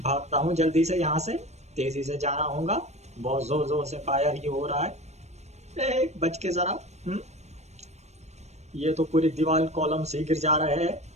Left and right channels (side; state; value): left; late; 0.32 ms